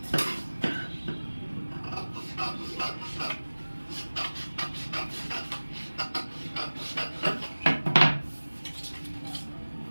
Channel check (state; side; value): inverted; both; correlation -1.00